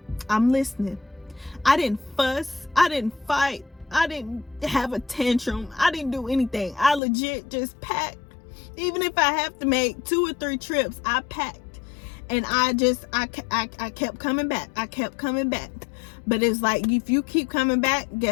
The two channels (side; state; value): right; drops out; at 7.0 s